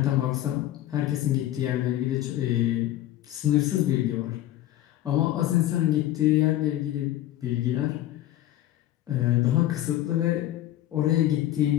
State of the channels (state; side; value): quieter; right; 13.9 dB